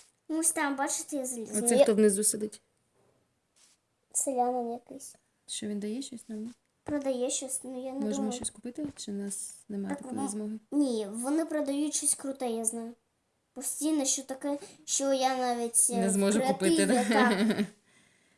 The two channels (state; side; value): identical; both; correlation 1.00